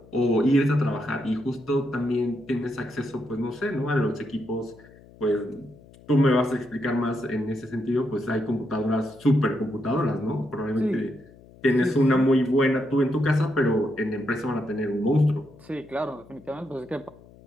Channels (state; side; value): noise; left; hum, 23 dB below the sound